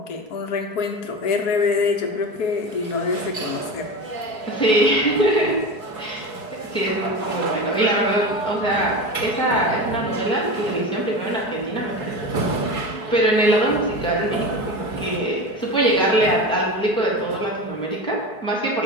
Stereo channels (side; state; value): right; late; 4.7 ms